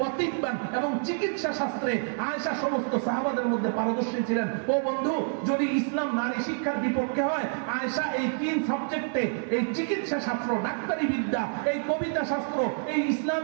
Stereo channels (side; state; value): left; silent; digital silence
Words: তিব্বান, এবং চিকিৎসা শাস্ত্রে আয়েশা সমস্ত সাহাবাদের মধ্যে পারদর্শী ছিলেন। ও বন্ধু, যদি ইসলাম নারী শিক্ষার বিপক্ষে হয়, আয়েশা এই 3 সাবজেক্টে, এই চিকিৎসা শাস্ত্র, ডাক্তারি বিদ্যা, এই কবিতা শাস্ত্র, এই